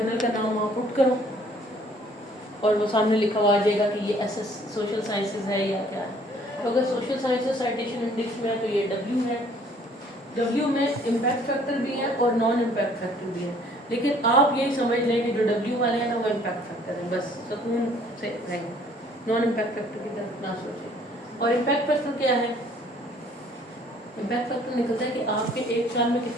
का नाम वहाँ पुट करो और वो सामने लिखा हुआ आ जाएगा कि ये SS सोशल साइंसेज है या क्या है। तो अगर सोशल साइंसेज साइटेशन इंडेक्स में है तो ये W है। W में इम्पैक्ट फैक्टर भी है और नॉन इम्पैक्ट फैक्टर भी है, लेकिन आप यही समझ लें कि जो W वाले हैं ना वो इम्पैक्ट फैक्टर है, बस सुकून से रहें, नॉन इम्पैक्ट फैक्टर की तरफ ना सोचें। और इम्पैक्ट फैक्टर क्या है? इम्पैक्ट फैक्टर निकलता है कि आपके एक साल में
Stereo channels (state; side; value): normal; both; correlation 0.58